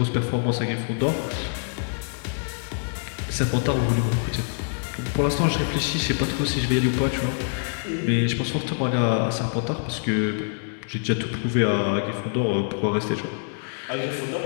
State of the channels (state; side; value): silent; right; digital silence